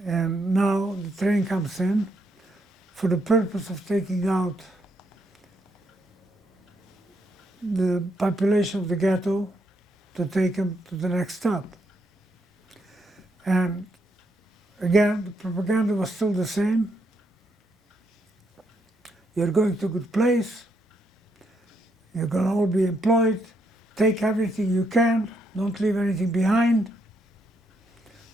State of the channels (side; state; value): both; normal; correlation 0.76